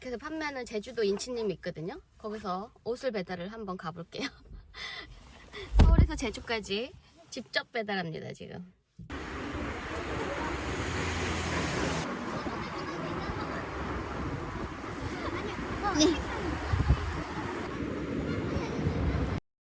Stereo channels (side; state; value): both; identical; correlation 1.00